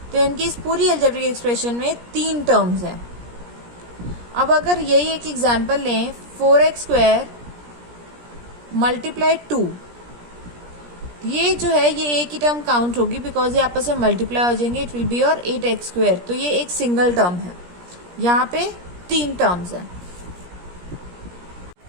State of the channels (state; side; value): late; left; 17 ms